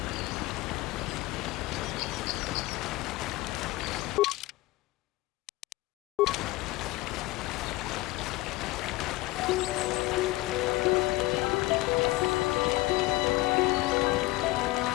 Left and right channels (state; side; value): quieter; right; 19.7 dB